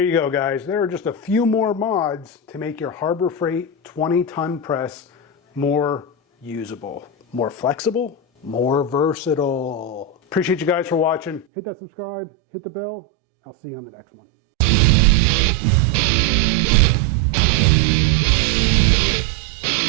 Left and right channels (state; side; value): drops out; left; at 11.5 s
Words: you go, guys. There are just a few more mods to make your Harbor Freight 20-ton press more usable, more flexible, more versatile. Appreciate you guys for watching. Hit that subscribe, hit the bell. I'll see you on the next one.